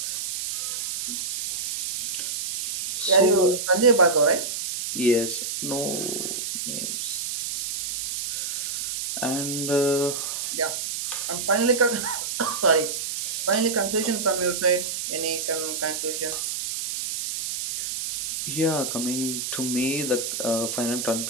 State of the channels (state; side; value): noise; right; hiss, 3 dB below the sound